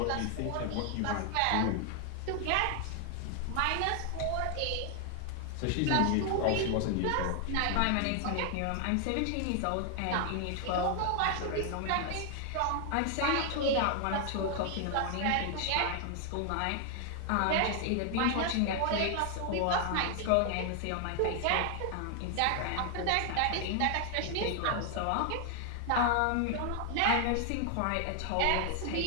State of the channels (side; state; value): both; different; correlation 0.00